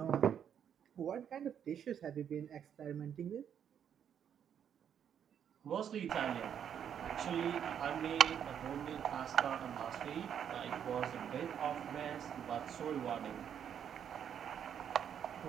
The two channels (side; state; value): left; quieter; 8.7 dB